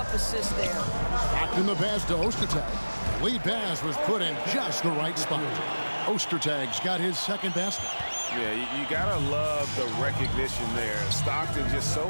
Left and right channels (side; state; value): both; inverted; correlation -1.00